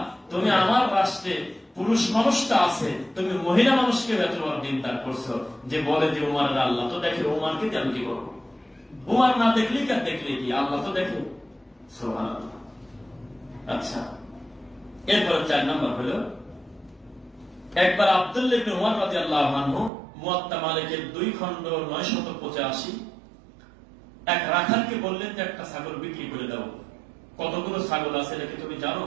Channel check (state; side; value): drops out; left; at 19.9 s